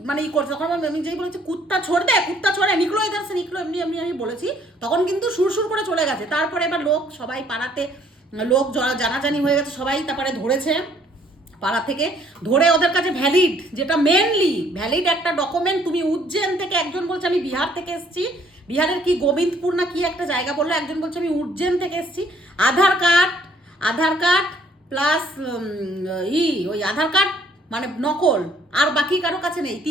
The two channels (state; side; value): normal; both; correlation 0.63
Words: মানে করছে। তখন আমি যেই বলেছি কুত্তা ছোড় দে, কুত্তা ছোড়ে, নিকলো ইধার সে নিকলো, এমনি এমনি আমি বলেছি, তখন কিন্তু সুরসুর করে চলে গেছে। তারপরে এবার লোক সবাই পাড়াতে লোক জানাজানি হয়ে গেছে, সবাই তারপরে ধরেছে পাড়া থেকে, ধরে ওদের কাছে ভ্যালিড, যেটা মেনলি ভ্যালিড একটা ডকুমেন্ট। তুমি উজ্জৈন থেকে, একজন বলছে আমি বিহার থেকে এসেছি, বিহারের কি গোবিন্দপুর না কি একটা জায়গা বললো, একজন বলছে আমি উজ্জৈন থেকে এসেছি। আধার কার্ড প্লাস ওই আধার কার্ড মানে নকল, আর বাকি কারো কাছে নেই।